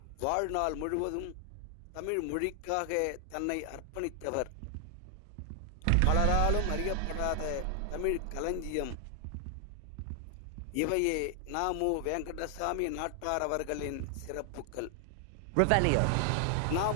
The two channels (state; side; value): different; both; correlation 0.00